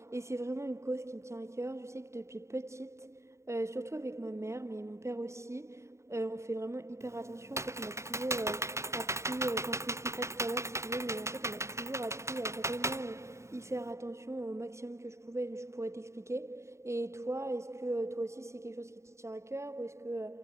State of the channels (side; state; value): left; late; 0.14 ms